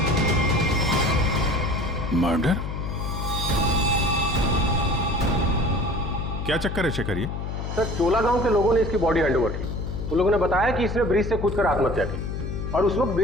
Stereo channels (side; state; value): left; noise; hum, 5 dB below the sound